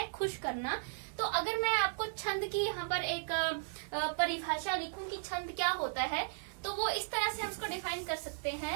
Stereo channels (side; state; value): left; silent; digital silence